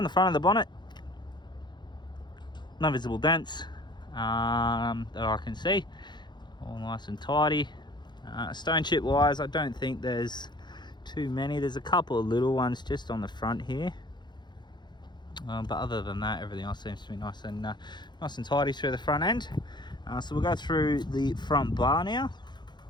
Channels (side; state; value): right; late; 0.21 ms